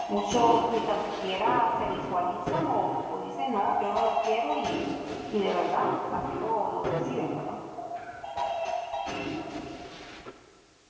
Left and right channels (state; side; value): identical; both; correlation 1.00